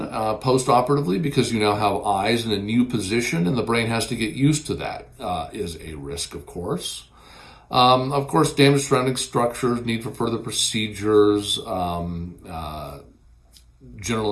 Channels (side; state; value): both; identical; correlation 1.00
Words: post-operatively, because you now have eyes in a new position and the brain has to get used to that, is a risk, of course. Of course, damaged surrounding structures, need for further procedures,